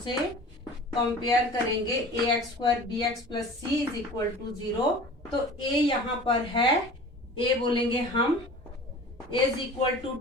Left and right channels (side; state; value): both; normal; correlation 0.41